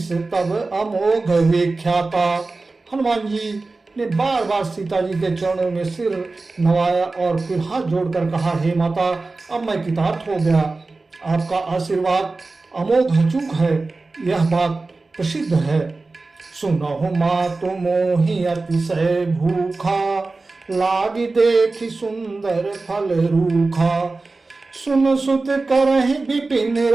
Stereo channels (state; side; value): quieter; left; 3.5 dB